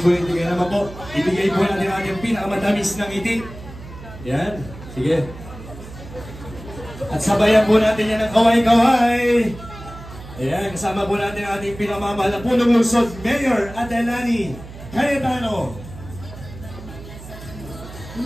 Kaya naman po, ibigay po natin ang ating pinakamatamis ng ngiti. Ayan, sige. At sabayan po natin yan ng kaway-kaway. Ayan, kasama po natin ang ating pinamamahal na punong lungsod, Mayor Ate Lani Cayetano.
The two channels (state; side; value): noise; right; hum, 15 dB below the sound